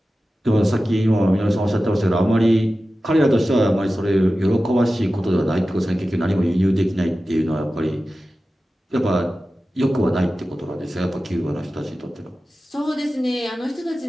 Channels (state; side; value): normal; both; correlation 0.94